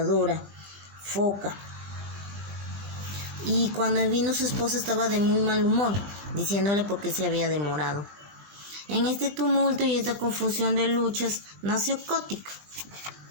foca. Y cuando vino su esposa estaba de muy mal humor, diciéndole por qué se había demorado. En este tumulto y esta confusión de luchas nació Kotick,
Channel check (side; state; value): left; late; 20 ms